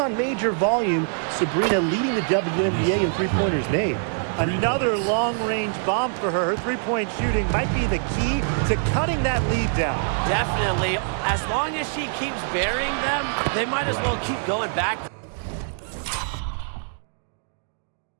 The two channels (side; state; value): left; silent; digital silence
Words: major volume. Sabrina leading the WNBA in three-pointers made. Another long-range bomb for her. Her three-point shooting might be the key to cutting that lead down. Definitely. As long as she keeps burying them, they might as well keep going back.